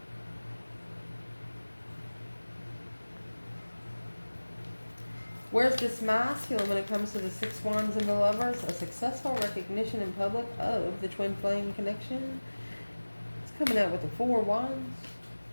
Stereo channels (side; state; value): both; inverted; correlation -1.00